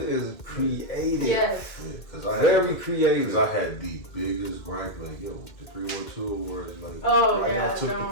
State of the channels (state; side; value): late; right; 2.1 ms